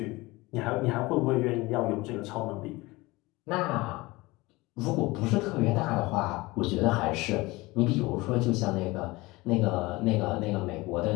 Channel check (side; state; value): right; quieter; 21.7 dB